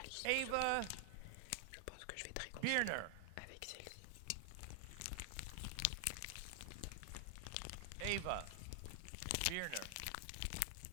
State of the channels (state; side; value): different; both; correlation 0.00